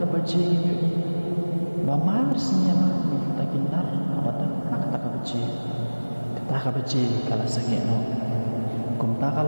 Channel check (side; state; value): both; inverted; correlation -1.00